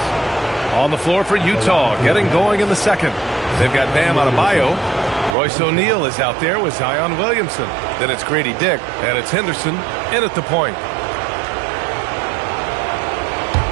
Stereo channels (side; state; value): left; drops out; at 5.4 s